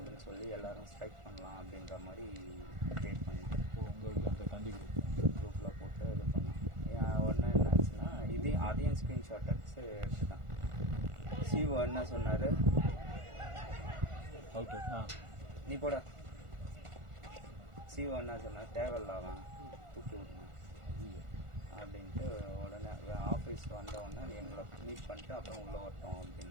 சொல்லி எல்லாரும் ஸ்ட்ரைக் பண்ணலாம் அப்படின்ற மாதிரி க்ரியேட் பண்ணிட்டு உங்களுக்கு அந்த தந்தி குரூப்பில் போட்டு இது பண்ணான். ஒன்று என்ன ஆச்சுன்னா அதையும் ஸ்க்ரீன்ஷாட் எடுத்து எடுத்துட்டான். சிஓ என்ன சொன்னார், அவுட்டு. நீ போட. சிஓ என்ன சொன்னார், தேவையில்லாதான் தூக்கி விடணும் அப்படின்ட்டு உடனே ஆஃபீஸ் வந்த உடனே எங்களை மீட் பண்ணிட்டு அப்புறம் உள்ளே வரட்டும்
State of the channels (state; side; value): late; left; 1.4 ms